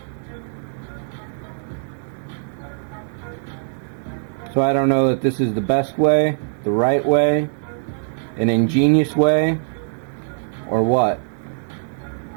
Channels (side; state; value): left; silent; 64 dB below the other